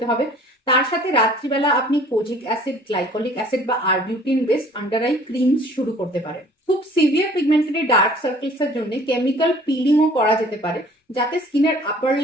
হবে। তার সাথে রাত্রিবেলা আপনি কোজিক অ্যাসিড, গ্লাইকোলিক অ্যাসিড বা arbutin based under eye creams শুরু করতে পারেন। খুব সিভিয়ার পিগমেন্টেড ডার্ক সার্কেলস এর জন্য কেমিক্যাল পিলিংও করা যেতে পারে, যাতে স্কিনের আপার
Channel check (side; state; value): both; normal; correlation 0.52